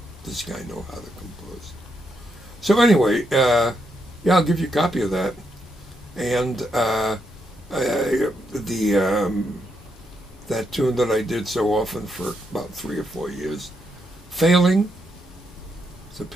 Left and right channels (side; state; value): both; normal; correlation 0.80